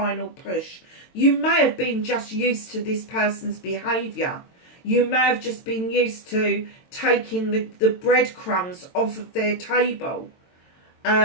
push. You may have been just used to this person's behaviour. You may have just been used to taking the breadcrumbs off of their table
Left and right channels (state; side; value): late; right; 22 ms